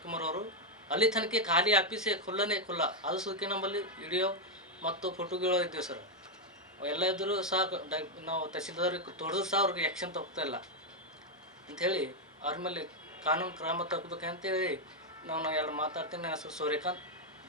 ಅವರು. ಅಲ್ಲಿ ತನಕ ಖಾಲಿ ಆಫೀಸೇ ಖುಲ್ಲ. ಅದು ಸುದಕ್ಕೆ ನಮ್ಮಲ್ಲಿ ವಿಡಿಯೋ ಮತ್ತು ಫೋಟೋಗಳು ಇದ್ದೇವೆ ಸರ್. ಎಲ್ಲ ಇದ್ದರೂ ಸಹ ನಾವು ತಹಸೀಲ್ದಾರ್ಗೆ ತೊಡೆದು ಸಹ ಅವ್ರಿಗೆ ಆ್ಯಕ್ಷನ್ ತಗೋತಾಯಿಲ್ಲ ಅಂಥೇಳಿ ಅವ್ರ ಮೇಲೆ ಕಾನೂನು ಕ್ರಮ ತಗೋಬೇಕಂತೇಳಿ ನಾನು ಎಲ್ಲ ಮಾತಾಡ್ತೀನಿ. ನನ್ನ ಹೆಸರು सूर्यकांत,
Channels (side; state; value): both; normal; correlation 0.01